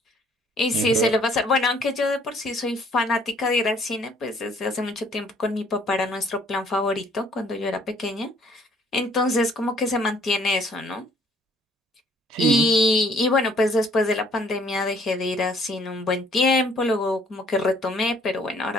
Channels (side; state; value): both; normal; correlation 0.60